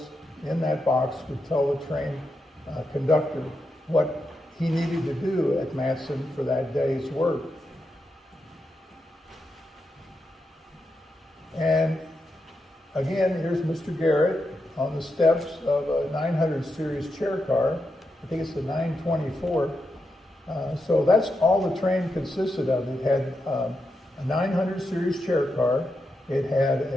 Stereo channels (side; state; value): both; normal; correlation 0.85